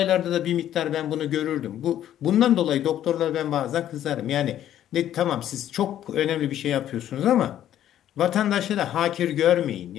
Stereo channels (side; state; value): right; quieter; 11.5 dB